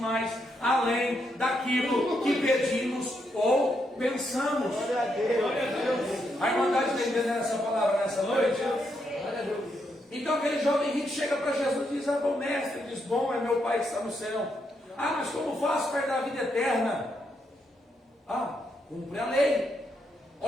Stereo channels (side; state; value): both; normal; correlation 0.79